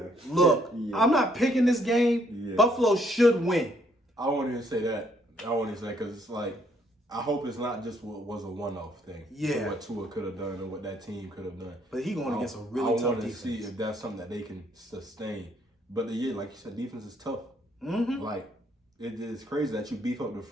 Look, I'm not picking this game. Yeah. Buffalo should win. I won't even say that. I won't even say because it's like, I hope it's not just what was a one-off thing. Yeah. What Tua could have done or what that team could have done. But he going against a really tough defense. I want to see if that's something that they can sustain. But like you said, defense is tough. Like, it is crazy that you beef up the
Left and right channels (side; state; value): both; normal; correlation 0.68